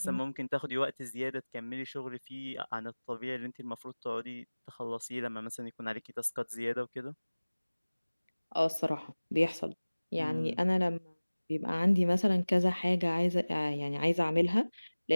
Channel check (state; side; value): inverted; both; correlation -1.00